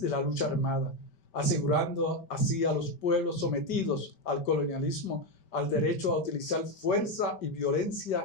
de la lucha armada, asegurando así a los pueblos sometidos al colonialismo al derecho a utilizar fuerza y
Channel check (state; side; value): late; right; 5.1 ms